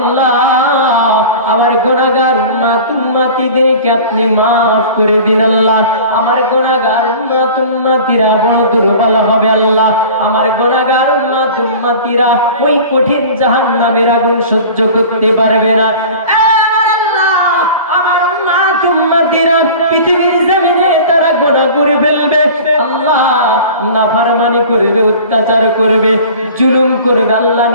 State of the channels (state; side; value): inverted; both; correlation -0.40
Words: আমার গুনাহগার উম্মতিদেরকে আপনি মাফ করে দিন। আল্লাহ আমার গুনাহগার উম্মতিরা বড় দুর্বল হবে, আল্লাহ আমার গুনাহগার উম্মতিরা ওই কঠিন জাহান্নামের আগুন সহ্য করতে পারবে না। পৃথিবীর জমিনে তারা গুনাহ করে ফেলবে, আল্লাহ নাফরমানি করবে, অত্যাচার করবে, জুলুম করবে আল্লাহ